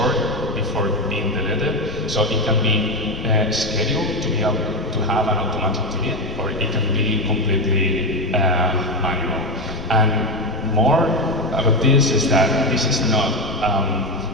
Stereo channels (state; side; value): noise; left; rumble, 13 dB below the sound